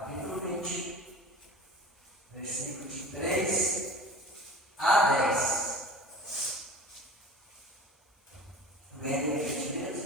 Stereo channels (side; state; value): both; normal; correlation 0.39